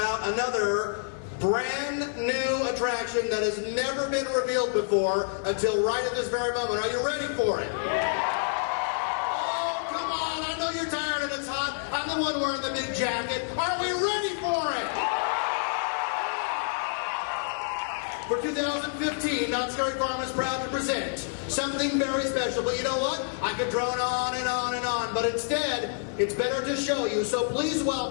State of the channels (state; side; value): silent; right; digital silence